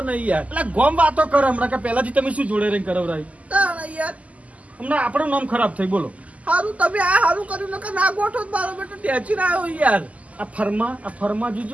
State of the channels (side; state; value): left; late; 0.071 ms